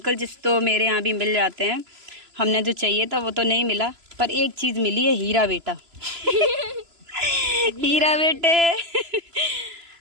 जिस तो मेरे यहाँ भी मिल जाते हैं, हमने जो चाहिए था वो तो नहीं मिला, पर एक चीज़ मिली है, हीरा बेटा। हीरा बेटे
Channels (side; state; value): left; late; 3.0 ms